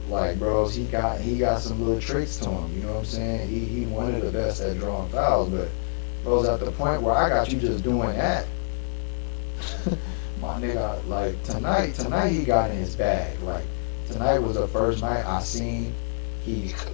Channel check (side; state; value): right; silent; 59 dB below the other